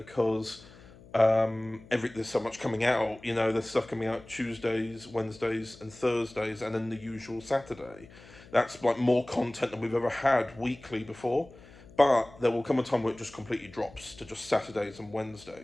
there's so much coming out, you know. There's stuff coming out Tuesdays, Wednesdays and Thursdays, and then the usual Saturday. That's like more content than we've ever had weekly before. But there will come a time where it just completely drops to just Saturdays and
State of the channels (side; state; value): left; noise; hum, 22 dB below the sound